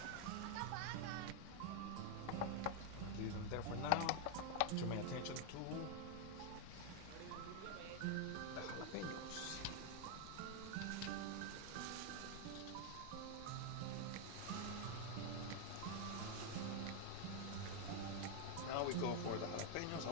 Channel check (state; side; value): different; both; correlation 0.01